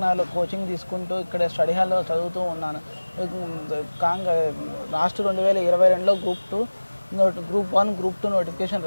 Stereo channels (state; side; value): inverted; both; correlation -1.00